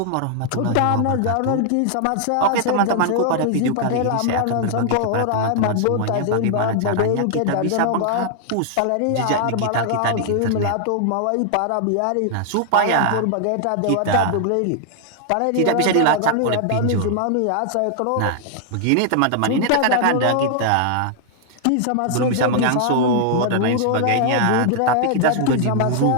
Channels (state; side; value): different; both; correlation 0.00